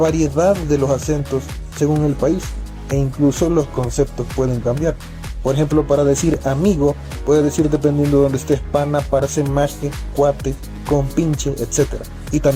de los acentos según el país, e incluso los conceptos pueden cambiar. Por ejemplo, para decir amigo, puede decir dependiendo de donde estés, pana, parce, maje, cuate, compinche, etc. Y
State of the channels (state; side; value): identical; both; correlation 1.00